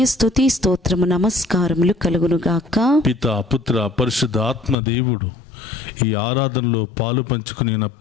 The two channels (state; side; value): drops out; right; at 4.8 s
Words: స్తుతి స్తోత్రము నమస్కారములు కలుగునుగాక. పితా, పుత్ర, పరిశుద్ధ ఆత్మ దేవుడు ఈ ఆరాధనలో పాలు పంచుకుని